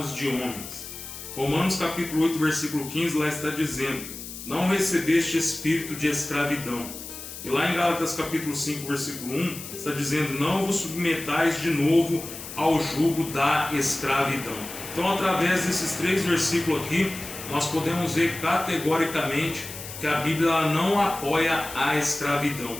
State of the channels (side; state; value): left; noise; hiss, 11 dB below the sound